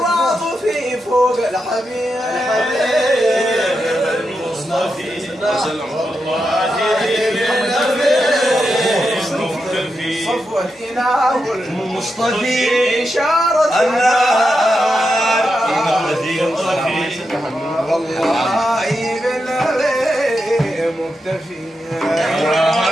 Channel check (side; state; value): both; normal; correlation 0.87